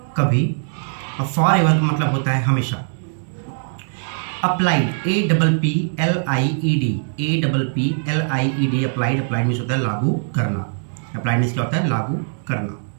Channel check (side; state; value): left; silent; digital silence